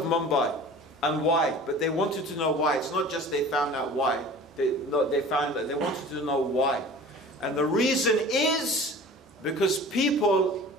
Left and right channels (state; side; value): normal; both; correlation 0.42